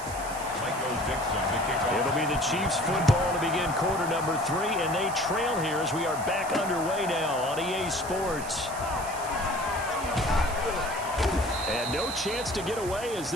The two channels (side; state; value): right; noise; hiss, 12 dB below the sound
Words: Mike goes Dixon to It'll be the Chiefs football to begin quarter number 3, and they trail here as we are back underway now on EA Sports. And no chance to get away as